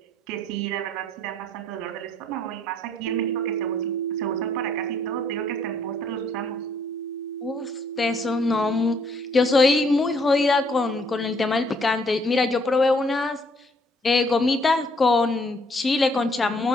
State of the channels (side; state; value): both; normal; correlation 0.66